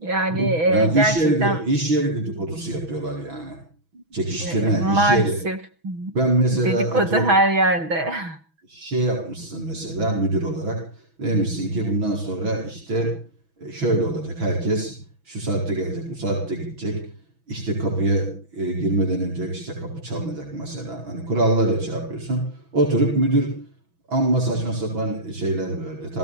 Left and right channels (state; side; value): late; left; 6.1 ms